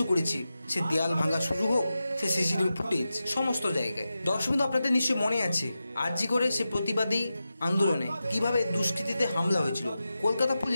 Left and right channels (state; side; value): inverted; both; correlation -0.92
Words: করেছে, সে দেয়াল ভাঙা শুরু হোক, সে সিসিটিভি ফুটেজ সমস্ত জায়গায়। দর্শক বন্ধু, আপনাদের নিশ্চয়ই মনে আছে আরজি করে সে প্রতিবাদী আন্দোলনে কিভাবে দুষ্কৃতীতে হামলা হয়েছিল। কলকাতা